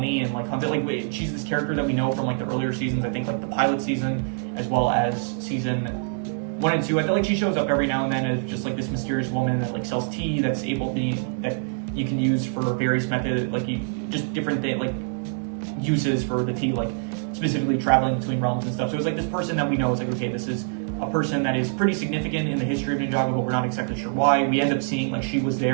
and like Hunter, like she's this character that we know from like the earlier seasons. I think like the pilot season as well as season 1 and 2. I feel like she shows up every now and then as just like this mysterious woman that like sells tea that's able to that you can use for various methods, like just different like uses for the tea, like specifically traveling between realms and stuff. So it's like this person that we know is like, okay, this is a person that is pretty significant in the history of Ninjago, but we're not exactly sure why. We end up seeing like she was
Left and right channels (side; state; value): left; silent; digital silence